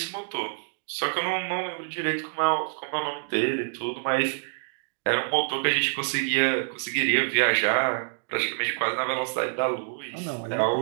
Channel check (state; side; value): silent; left; digital silence